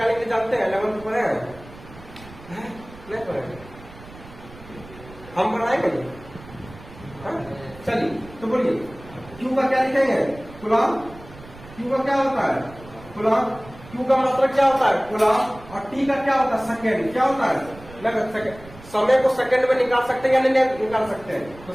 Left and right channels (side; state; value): right; noise; rumble, 19 dB below the sound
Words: के लिए जानते हैं, 11th पढ़े हैं, नहीं पढ़े, हम बनाएंगे नहीं। चलिए तो बोलिए क्यू का क्या लिखेंगे, कूलम। क्यू का क्या होता है कूलम, क्यू का मात्रक क्या होता है कूलम। और टी का क्या होता है सेकेंड, क्या होता है सेकेंड। समय को सेकेंड में निकाल सकते हैं या नहीं निकाल सकते हैं, तो